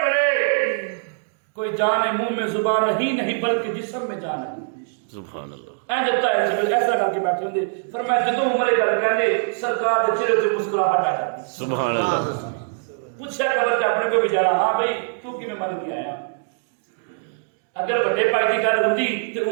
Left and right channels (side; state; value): left; silent; digital silence